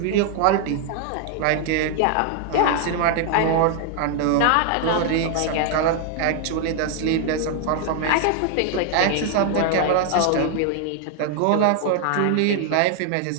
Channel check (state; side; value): different; both; correlation 0.00